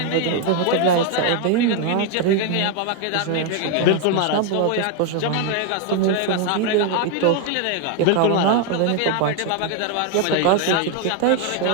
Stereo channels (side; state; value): both; different; correlation 0.01